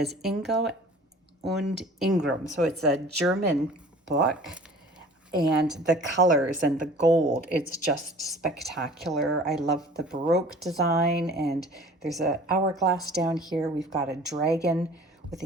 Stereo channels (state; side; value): normal; both; correlation 0.47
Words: Ingo und Ingram, so it's a German book, and the colors and the gold, it's just spectacular. I love the Baroque design, and there's an hourglass down here. We've got a dragon with